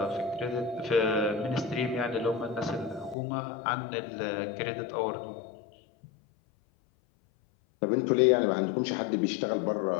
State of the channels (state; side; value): drops out; right; at 3.2 s